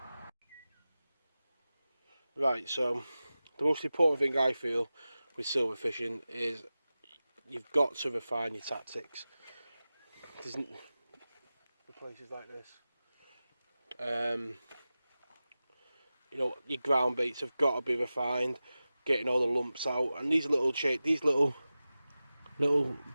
Right, so the most important thing I feel with silver fishing is you've got to refine your tactics. It isn't the places like this. You know, your ground baits have got to be refined, getting all the lumps out, and these little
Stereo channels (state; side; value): inverted; both; correlation -0.95